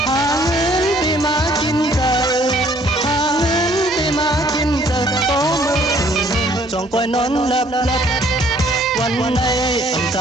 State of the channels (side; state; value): both; normal; correlation 0.61